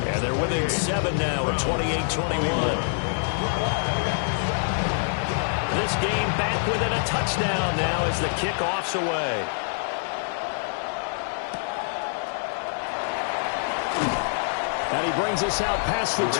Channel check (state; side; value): silent; right; digital silence